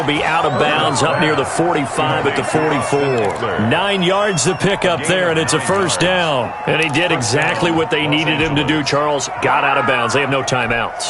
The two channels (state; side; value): identical; both; correlation 1.00